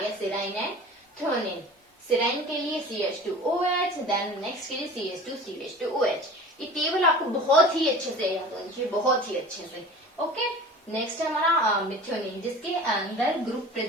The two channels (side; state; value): both; normal; correlation 0.40